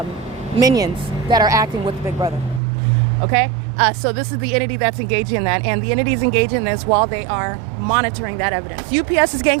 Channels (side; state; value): left; drops out; at 2.6 s